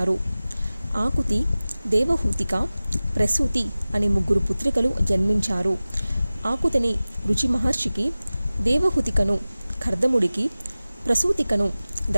ఆకుతి, దేవహూతిక, ప్రసూతి అనే 3 పుత్రికలు జన్మించారు. ఆకుతిని రుచి మహర్షికి, దేవహూతికను కర్దముడికి, ప్రసూతికను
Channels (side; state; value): both; inverted; correlation -0.97